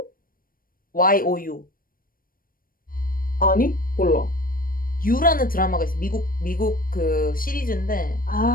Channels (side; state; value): right; late; 0.41 ms